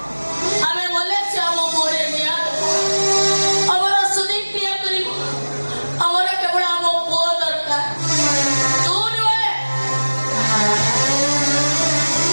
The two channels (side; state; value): both; inverted; correlation -1.00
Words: ଆମେ ଗଲେ ସେ ଆମ ପୁଅରେ ନିଆଁ ଆମର ସୁଦୀପ କ୍ରିୟା କରିବ ଆମର କେବଳ ଆମ ପୁଅ ଦରକାର ତୁ ନୁହେଁ